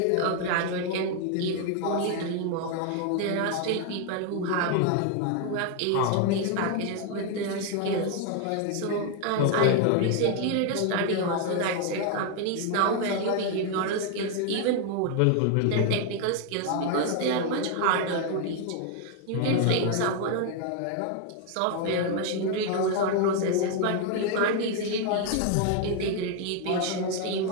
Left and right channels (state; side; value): different; both; correlation 0.01